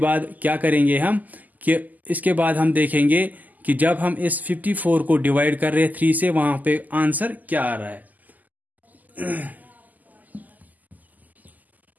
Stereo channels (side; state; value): left; late; 0.081 ms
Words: क्या करेंगे हम कि इसके बाद हम देखेंगे कि जब हम इस 54 को डिवाइड कर रहे हैं 3 से, वहां पे आंसर क्या आ रहा है।